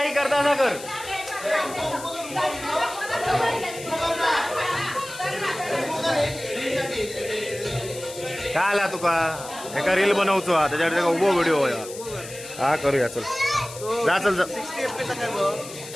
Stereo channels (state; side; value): noise; left; hiss, 13 dB below the sound